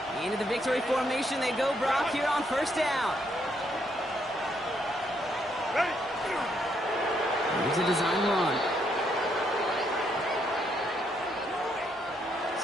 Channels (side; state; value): both; normal; correlation 0.74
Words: Into the victory formation they go, Brock, here on first down. Here's a design run.